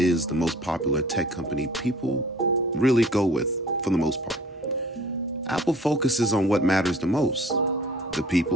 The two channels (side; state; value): both; normal; correlation 0.49